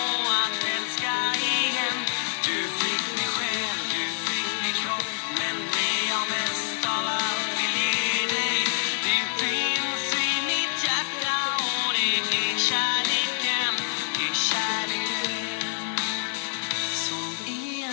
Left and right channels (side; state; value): right; silent; digital silence